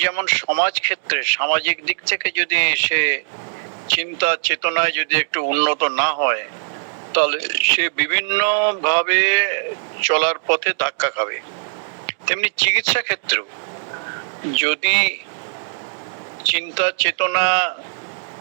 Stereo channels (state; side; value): silent; left; digital silence